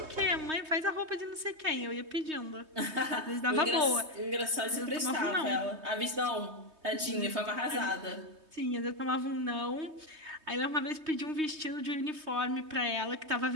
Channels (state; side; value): late; left; 3.2 ms